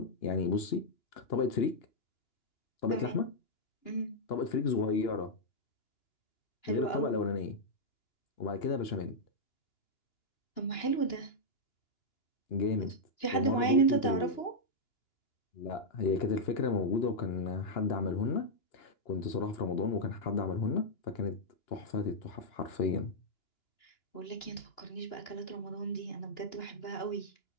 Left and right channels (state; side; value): late; right; 2.9 ms